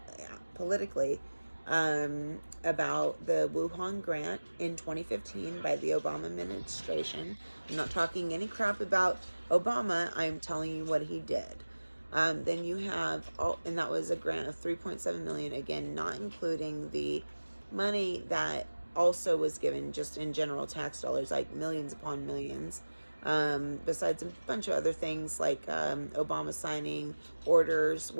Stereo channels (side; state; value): both; inverted; correlation -1.00